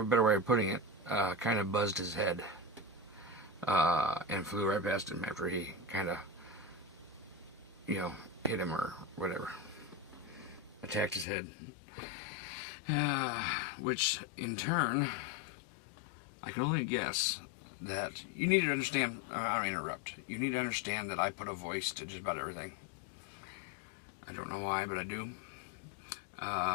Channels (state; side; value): drops out; right; at 11.2 s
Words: a better way of putting it, kind of buzzed his head, and flew right past him after he kind of, hit him or whatever, attacked his head, which in turn, I can only guess that you need to understand, I don't interrupt, you need to understand that I put a voice to just about everything. I don't know why, but I do.